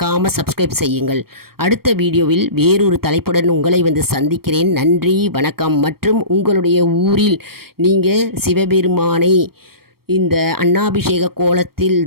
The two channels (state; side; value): late; left; 0.94 ms